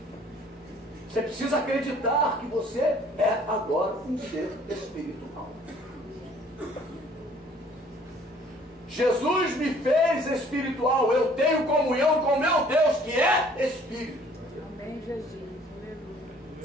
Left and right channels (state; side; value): normal; both; correlation 0.56